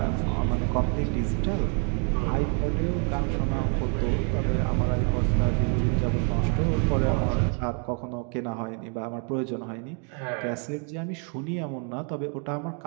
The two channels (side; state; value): left; quieter; 39.8 dB